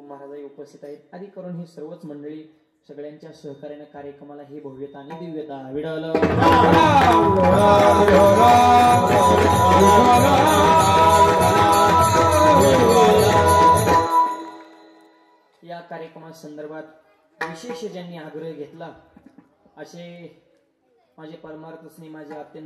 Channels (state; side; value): identical; both; correlation 1.00